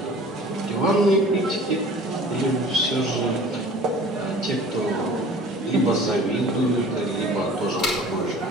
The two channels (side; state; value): both; normal; correlation 0.46